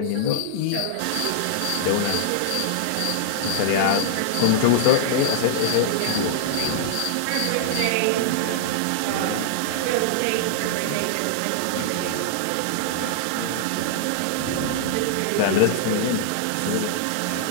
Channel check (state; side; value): different; both; correlation -0.01